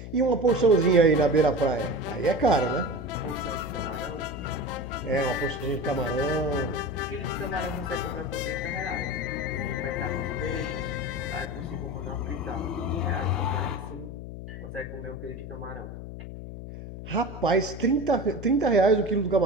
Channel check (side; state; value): left; noise; hum, 10 dB below the sound